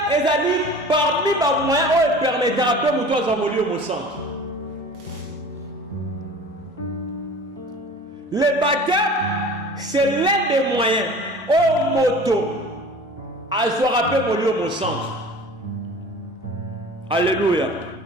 est parmi les moyens qui permettent de nous envoler au centre. Le baptême, c'est l'un des moyens au moto à se rappeler au centre. Alléluia.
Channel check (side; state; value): both; normal; correlation 0.41